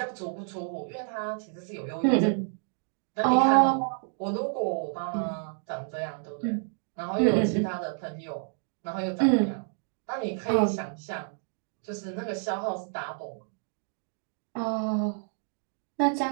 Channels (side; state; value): left; silent; 58 dB below the other